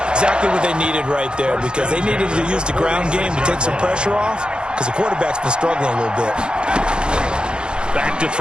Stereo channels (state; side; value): late; left; 0.050 ms